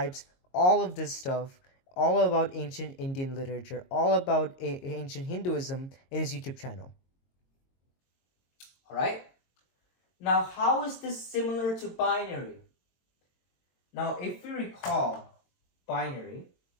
all of this stuff, all about ancient Indian literature, all about ancient Hinduism in his YouTube channel. Alright? Now, how is this similar to binary? Now, if you recall binary,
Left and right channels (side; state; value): right; late; 22 ms